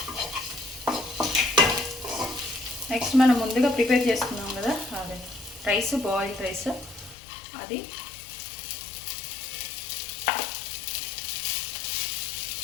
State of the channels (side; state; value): right; drops out; at 7.2 s